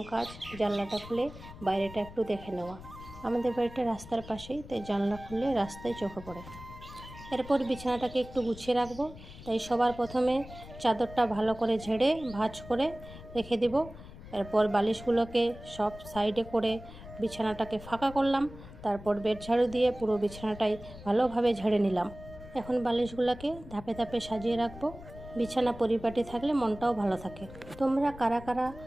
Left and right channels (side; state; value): left; noise; rumble, 16 dB below the sound